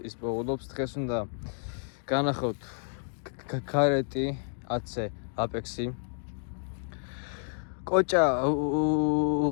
პოულობს, დღეს უნდა განახოთ კარეტი 10-ზე აპექსი. კოჭა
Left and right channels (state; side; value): silent; right; 58 dB below the other